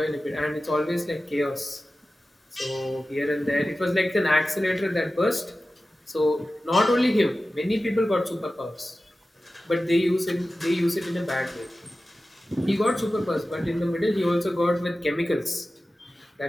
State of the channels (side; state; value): both; normal; correlation 0.95